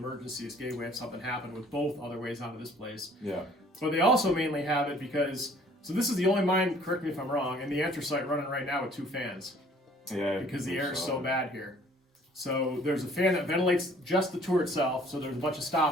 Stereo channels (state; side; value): normal; both; correlation 0.56